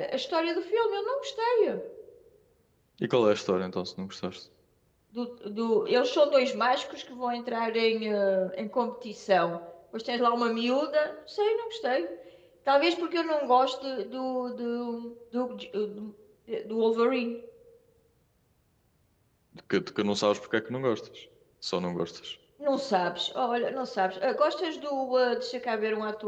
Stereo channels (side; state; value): both; identical; correlation 1.00